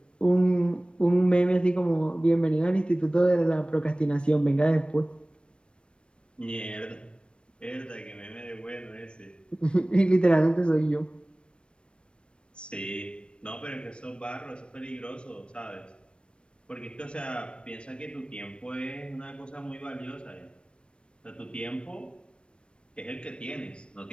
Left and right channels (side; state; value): right; late; 0.057 ms